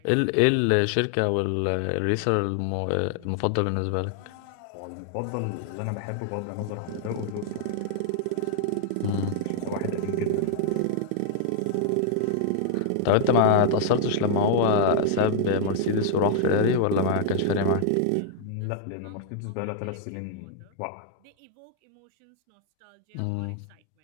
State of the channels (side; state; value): both; different; correlation 0.00